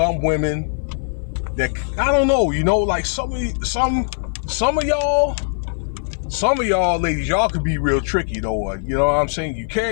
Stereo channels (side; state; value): right; silent; 57 dB below the other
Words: women that, I don't know, like some of y'all Some of y'all ladies, y'all could be real tricky though. You know what I'm saying? You